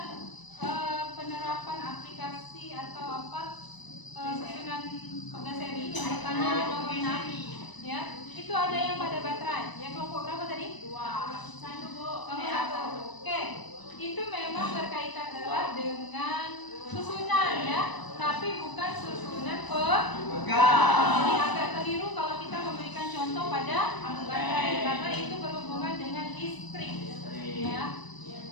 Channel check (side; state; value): right; late; 1.0 ms